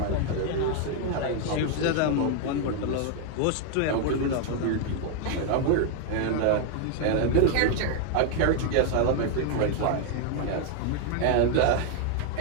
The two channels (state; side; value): different; both; correlation 0.00